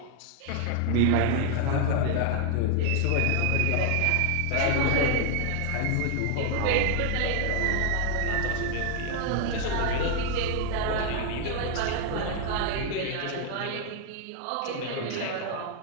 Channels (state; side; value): different; both; correlation 0.00